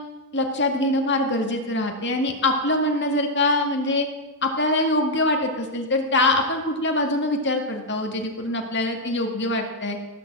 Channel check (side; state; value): both; normal; correlation 0.00